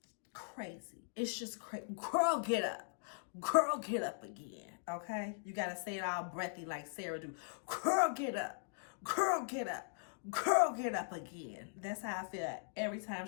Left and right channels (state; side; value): silent; right; digital silence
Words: Crazy. It's just crazy. Girl, get up. Girl, get up again. Okay? You got to say it all breathy like Sarah do. Girl, get up. Girl, get up. Girl, get up again. That's how I feel every time